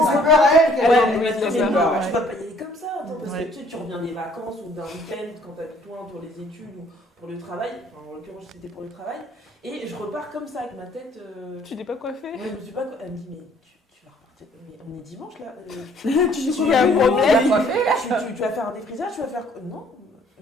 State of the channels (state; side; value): normal; both; correlation 0.60